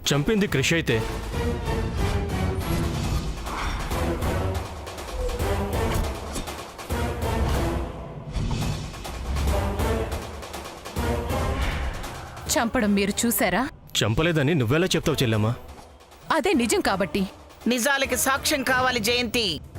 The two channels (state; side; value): identical; both; correlation 1.00